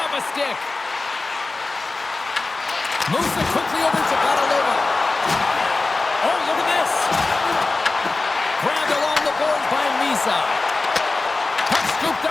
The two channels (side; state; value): right; quieter; 3.5 dB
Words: a stick. Moves it quickly over to Bathalon. Oh, look at this. Grabbed along the boards by Lisa. Puck scooped